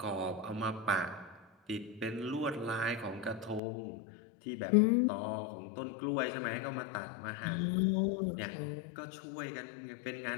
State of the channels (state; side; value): drops out; right; at 3.6 s